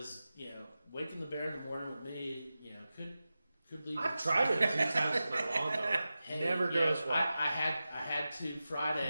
waking the bear in the morning with me, could lead. I've tried it a few times with my lawnmower. Hey, Never goes well. I had to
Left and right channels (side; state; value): both; inverted; correlation -0.94